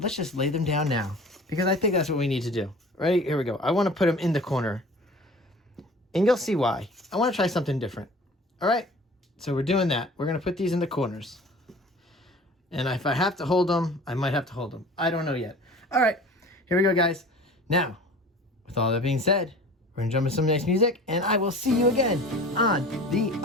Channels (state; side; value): normal; both; correlation 0.42